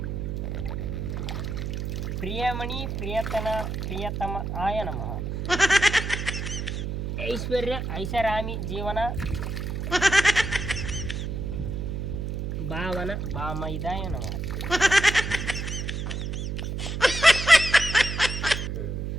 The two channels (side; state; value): right; noise; hum, 3 dB below the sound